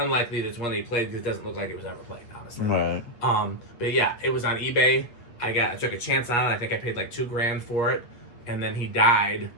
that it's one that he played because it doesn't look like it was ever played, honestly. Right. But yeah, it was on eBay. I took a chance on it. I think I paid like $2,000 for it, and then he died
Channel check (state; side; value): late; right; 8.3 ms